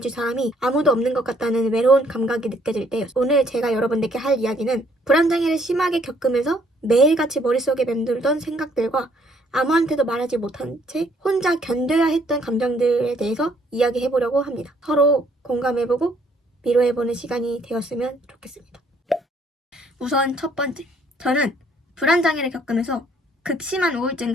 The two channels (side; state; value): both; normal; correlation 0.65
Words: 사람이 아무도 없는 것 같다는 외로운 감각이 느껴질 때였어요. 오늘 제가 여러분들께 할 이야기는 불안장애를 심하게 겪으면서 매일같이 머릿속에 맴돌던 생각들과 아무한테도 말하지 못한 채 혼자 견뎌야 했던 감정들에 대해서 이야기해보려고 합니다. 서로 공감해보고 위로해보는 시간이 되었으면 좋겠습니다. 우선 첫 번째, 저는 불안장애를 겪으면서 극심한